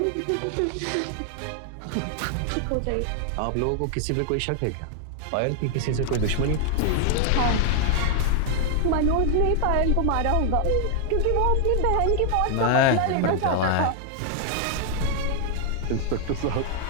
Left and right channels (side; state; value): both; different; correlation 0.00